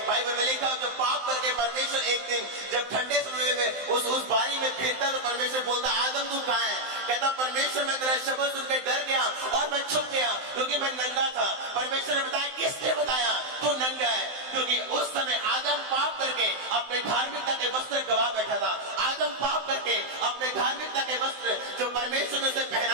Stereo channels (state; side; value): late; left; 16 ms